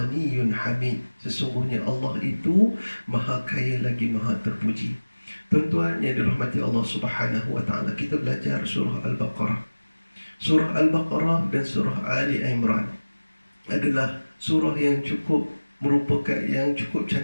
hamid, sesungguhnya Allah itu maha kaya lagi maha terpuji. Tuan-tuan yang dirahmati Allah Subhanahu wa ta'ala, kita belajar surah Al-Baqarah. Surah Al-Baqarah dan surah Ali Imran adalah surah yang cukup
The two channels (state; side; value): inverted; both; correlation -1.00